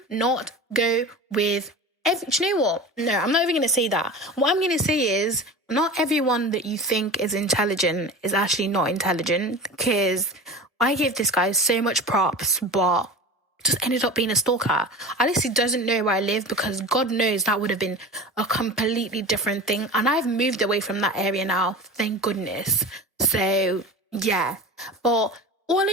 not go with do you know what? No, I'm not even going to say that. What I'm going to say is not everyone that you think is intelligent is actually not intelligent, because I give this guy so much props, but just ended up being a stalker. Alice doesn't know where I live because God knows that would have been a completely different thing. And I've moved away from that area now, thank goodness. So, yeah. But all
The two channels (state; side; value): normal; both; correlation 0.32